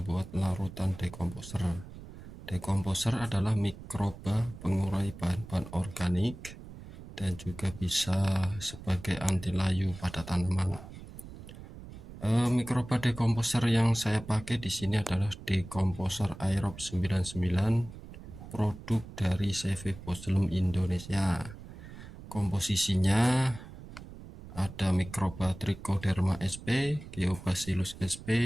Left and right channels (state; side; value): noise; right; rumble, 14 dB below the sound